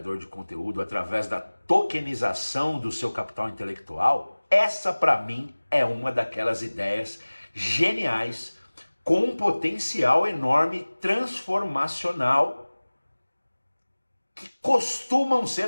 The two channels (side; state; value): both; inverted; correlation -1.00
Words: de conteúdo através da tokenização do seu capital intelectual, essa para mim é uma daquelas ideias geniais com um potencial enorme transformacional que costumam